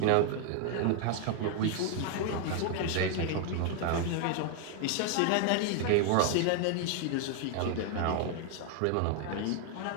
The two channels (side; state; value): both; different; correlation 0.00